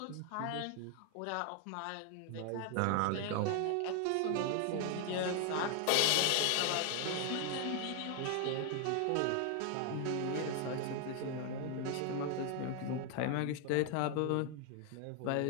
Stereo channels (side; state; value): both; different; correlation 0.00